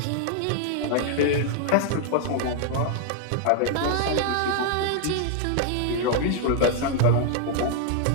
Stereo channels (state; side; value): different; both; correlation 0.00